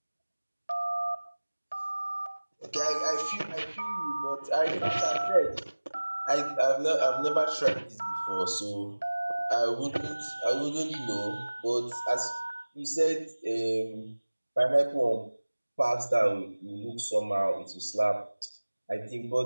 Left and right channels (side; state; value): both; inverted; correlation -1.00